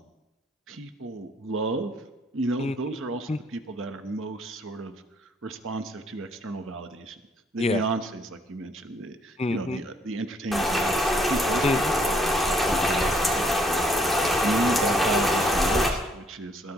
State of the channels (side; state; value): both; normal; correlation 0.66